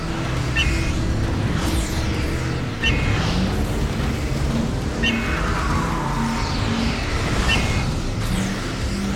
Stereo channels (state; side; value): identical; both; correlation 1.00